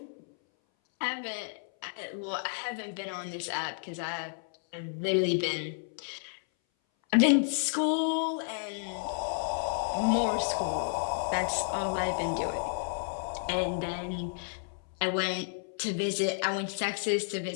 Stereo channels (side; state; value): right; silent; 57 dB below the other